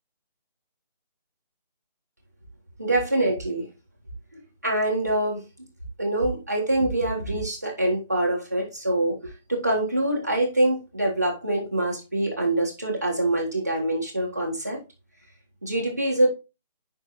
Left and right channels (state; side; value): inverted; both; correlation -0.73